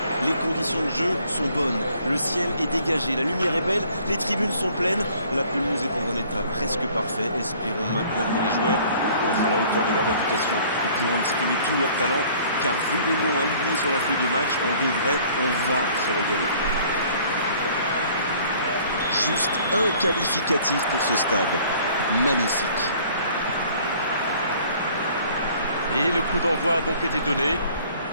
Les conditions de jeu sont bonnes, le ciel est dégagé, la lumière est belle, les tribunes sont pleines, la pelouse est dans un état presque parfait. Espérons maintenant que les joueurs vont être à la hauteur de leur réputation et pourront exprimer tout leur talent, car vu les noms alignés sur la feuille de match, on va se régaler. Juste un qualificatif pour ce stade. Magnifique. Et le coup d'envoi a donc été donné.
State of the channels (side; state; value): both; inverted; correlation -0.55